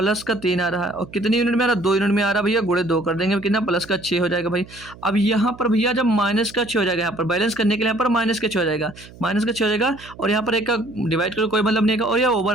का 3 आ रहा है, और कितनी यूनिट में आ रहा है, 2 यूनिट में आ रहा है भैया, गुणे 2 कर देंगे कितना, प्लस का 6 हो जाएगा भाई। अब यहाँ पर भैया जब माइनस का 6 हो जाएगा, यहाँ पर बैलेंस करने के लिए यहाँ पर माइनस का 6 हो जाएगा, माइनस का 6 हो जाएगा, और यहाँ पर एक का डिवाइड करो कोई मतलब नहीं है, और यह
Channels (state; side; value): noise; right; hum, 20 dB below the sound